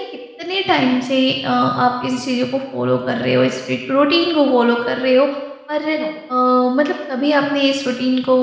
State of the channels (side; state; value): both; identical; correlation 1.00